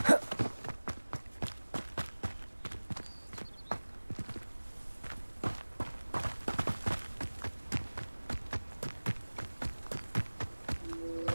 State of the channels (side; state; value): both; inverted; correlation -1.00